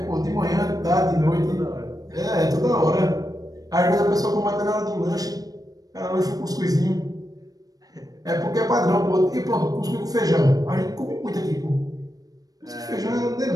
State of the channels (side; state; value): left; late; 0.18 ms